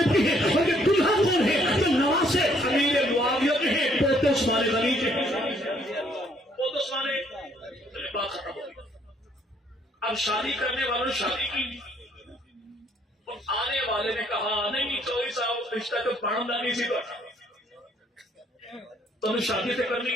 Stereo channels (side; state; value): both; normal; correlation 0.66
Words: کی ہیں، اور یہ دلہا کون ہے؟ یہ نواسے امیر معاویہ کے ہیں، پوتے عثمان غنی کے ہیں، پوتے عثمان۔ بات ختم ہو گئی۔ اب شادی کرنے والوں نے شادی کی، اور آنے والے نے کہا نہیں چوہدری صاحب رشتہ تو پڑھنا نہیں سی تو نے شادی سے کرنی